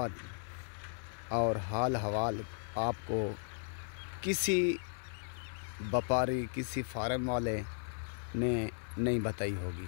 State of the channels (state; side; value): silent; right; digital silence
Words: और हाल हवाल आपको किसी व्यापारी, किसी फार्म वाले ने नहीं बताई होगी,